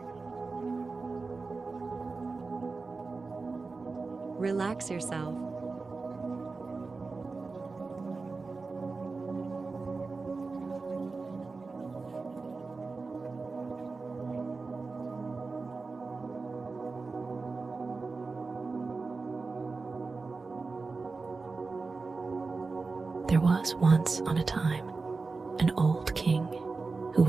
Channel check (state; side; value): quieter; left; 4.0 dB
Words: Relax yourself. There was once on a time an old king who